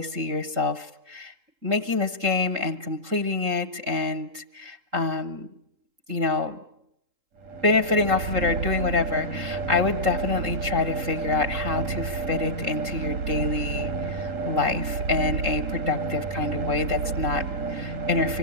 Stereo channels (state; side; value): late; left; 3.8 ms